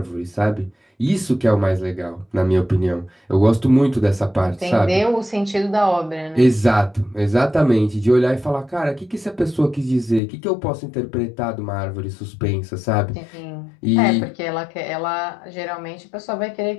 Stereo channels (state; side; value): drops out; right; at 10.2 s